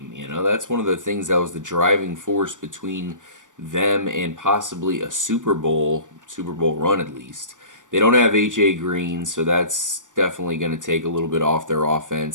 That's one of the things that was the driving force between them and possibly a Super Bowl run at least. They don't have A.J. Green, so that's definitely going to take a little bit off their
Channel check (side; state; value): left; late; 0.87 ms